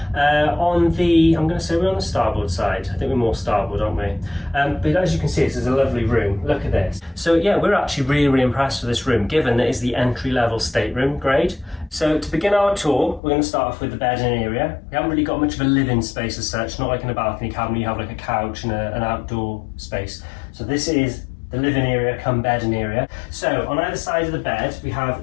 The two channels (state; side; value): drops out; right; at 13.2 s